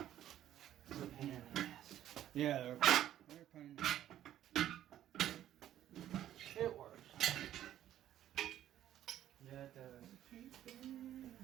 It's a pain in the ass. Yeah, they're pain. It works. Yeah, it does.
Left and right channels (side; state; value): left; quieter; 12.0 dB